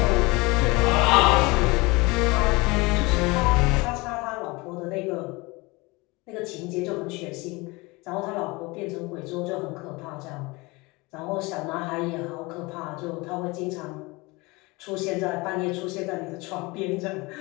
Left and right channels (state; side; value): quieter; right; 24.5 dB